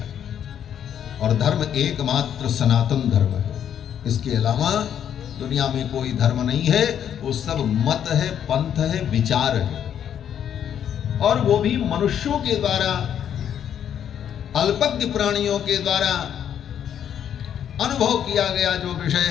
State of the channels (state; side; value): quieter; right; 9.3 dB